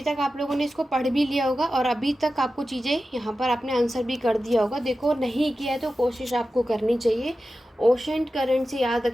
तक आप लोगों ने इसको पढ़ भी लिया होगा और अभी तक आपको चीज़ें यहाँ पर आपने आंसर भी कर दिया होगा। देखो, नहीं किया है तो कोशिश आपको करनी चाहिए। ओशन करंट से याद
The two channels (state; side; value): normal; both; correlation 0.93